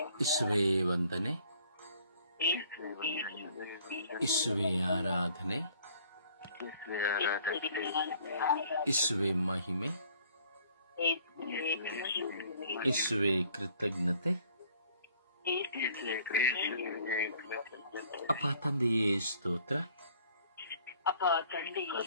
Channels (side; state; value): both; inverted; correlation -0.58